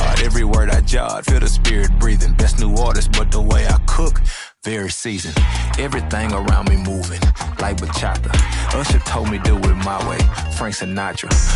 every word I jot. Feel the spirit breathing. Best new artist, but the way I cook, very seasoned. Everything around me moving, like bachata. Usher told me do it my way. Frank Sinatra.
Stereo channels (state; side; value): identical; both; correlation 1.00